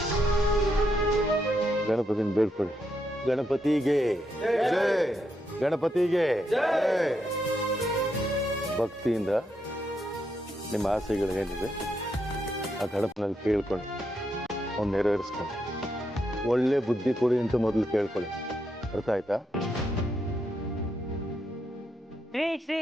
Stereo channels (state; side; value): normal; both; correlation 0.80